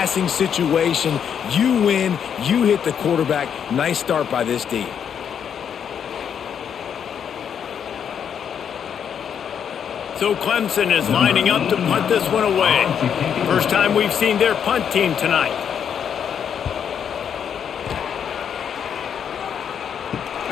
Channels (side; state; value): right; quieter; 8.1 dB